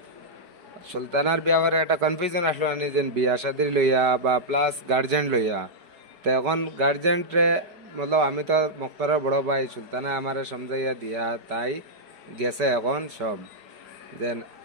সুলতানার ব্যাপারে একটা কনফিউশন আসলো আনি যে বিয়া শাদির লইয়া বা প্লাস গার্জেন লইয়া। তো এখন গার্জেনরে মতলব আমি তো মুক্তারের বড় ভাই, সুলতানা আমারে সমঝাইয়া দিয়া তাই গেছে এখন সব যেন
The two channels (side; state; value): left; late; 4.7 ms